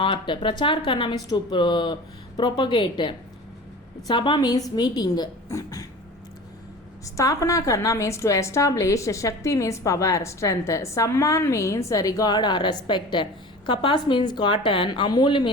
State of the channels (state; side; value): normal; both; correlation 0.38